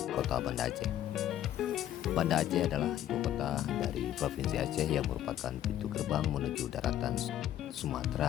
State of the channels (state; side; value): quieter; right; 11.8 dB